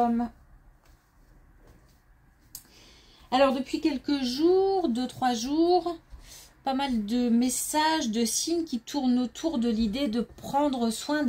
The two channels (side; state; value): both; identical; correlation 1.00